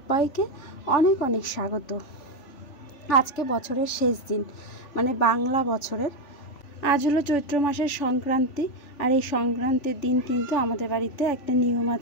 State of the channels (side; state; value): right; late; 3.5 ms